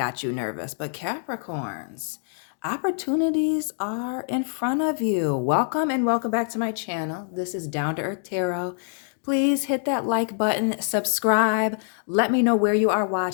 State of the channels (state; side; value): silent; right; digital silence